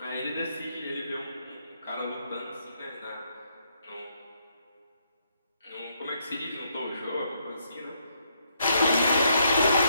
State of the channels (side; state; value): both; inverted; correlation -0.74